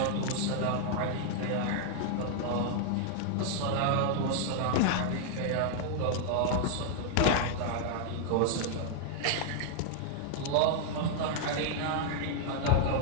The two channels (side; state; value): both; different; correlation -0.01